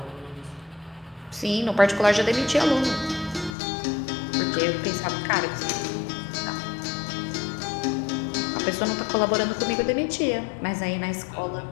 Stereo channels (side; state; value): right; drops out; at 3.6 s